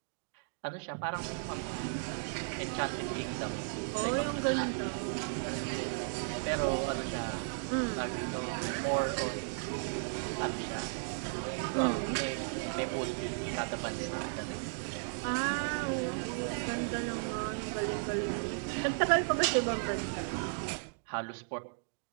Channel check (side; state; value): left; silent; digital silence